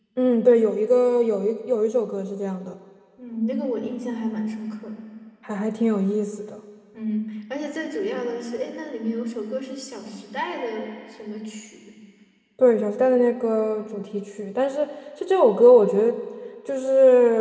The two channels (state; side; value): identical; both; correlation 1.00